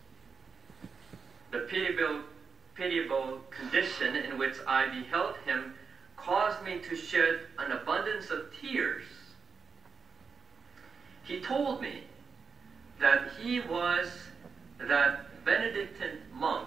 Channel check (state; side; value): quieter; left; 5.5 dB